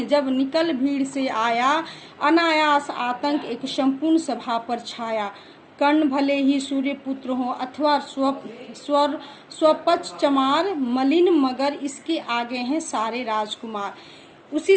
जब निकल भीड़ से आया, अनायास आतंक एक संपूर्ण सभा पर छाया, कर्ण भले ही सूर्य पुत्र हो अथवा स्वपक्ष चमार, मलिन मगर इसके आगे हैं सारे राजकुमार। उसी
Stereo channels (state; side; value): identical; both; correlation 1.00